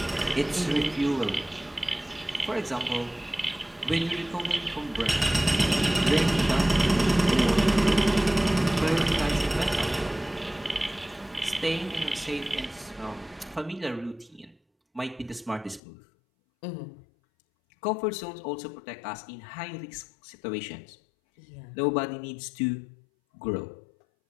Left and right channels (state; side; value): drops out; right; at 15.8 s